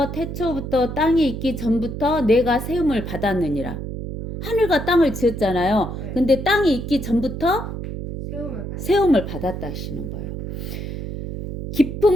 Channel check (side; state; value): right; noise; hum, 6 dB below the sound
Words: 태초부터 땅이 있기 전부터 내가 세움을 받았느니라. 하늘과 땅을 지었잖아요. 근데 땅이 있기 전부터 세움을 받았다 하시는 거예요.